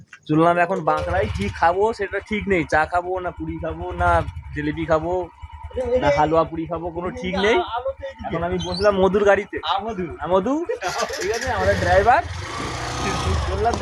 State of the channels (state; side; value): identical; both; correlation 1.00